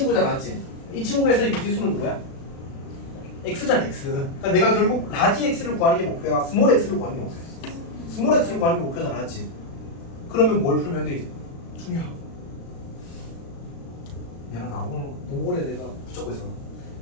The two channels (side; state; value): right; late; 36 ms